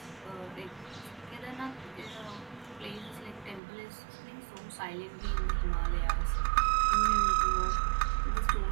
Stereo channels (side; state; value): left; drops out; at 3.6 s